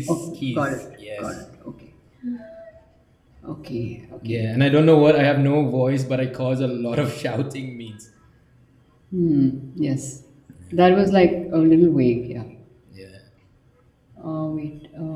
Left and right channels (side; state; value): both; identical; correlation 1.00